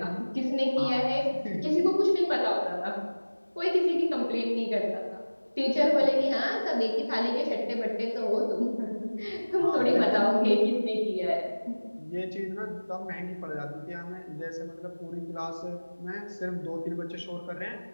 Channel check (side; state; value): both; inverted; correlation -1.00